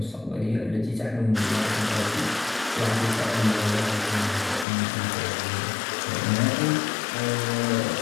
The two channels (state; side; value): drops out; right; at 4.7 s